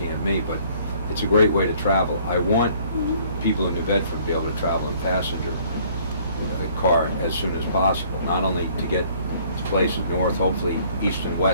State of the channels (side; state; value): both; inverted; correlation -0.58